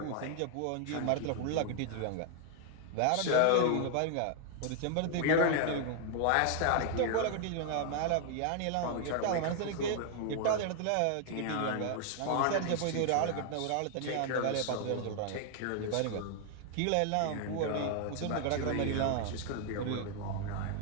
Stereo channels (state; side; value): different; both; correlation 0.00